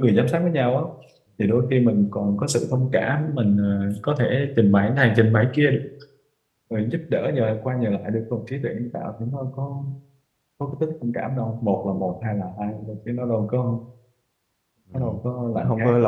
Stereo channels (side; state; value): both; identical; correlation 1.00